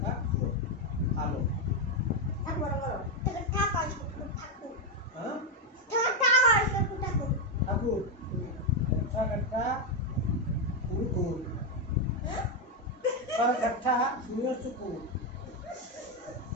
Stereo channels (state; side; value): normal; both; correlation 0.04